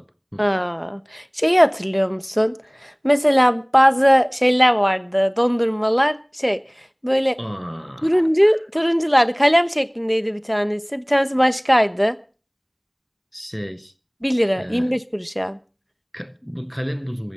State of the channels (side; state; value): both; identical; correlation 1.00